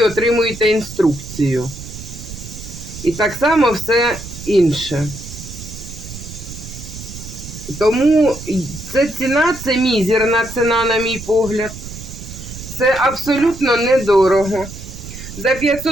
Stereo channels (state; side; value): noise; right; rumble, 12 dB below the sound